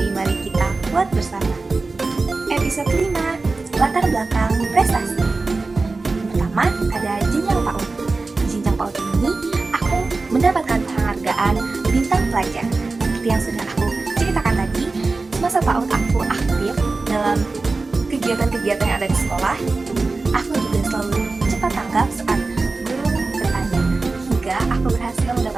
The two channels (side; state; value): left; quieter; 3.7 dB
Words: mari kita buat bersama. Episode 5, latar belakang prestasi. Pertama, ada jenjang PAUD. Di jenjang PAUD ini, aku mendapatkan penghargaan bintang pelajar. Seperti yang sudah aku ceritakan tadi, semasa PAUD aku aktif dalam kegiatan-kegiatan yang ada di sekolah. Aku juga selalu cepat tanggap saat aku berhasil